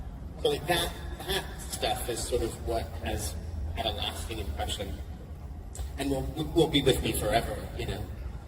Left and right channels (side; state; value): both; identical; correlation 1.00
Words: So like that stuff is sort of what has had a lasting impression and will be with me forever, you know.